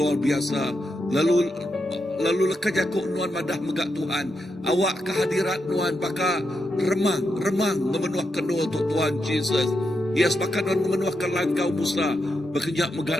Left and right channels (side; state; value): both; normal; correlation 0.84